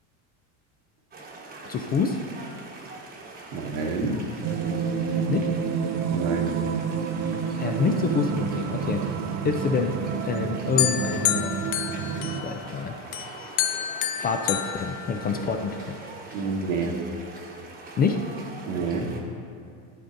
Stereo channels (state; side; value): normal; both; correlation 0.21